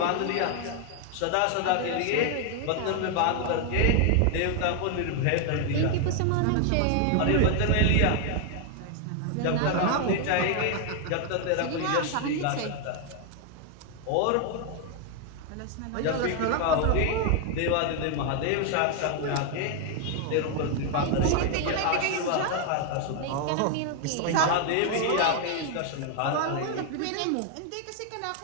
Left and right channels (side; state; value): both; different; correlation 0.00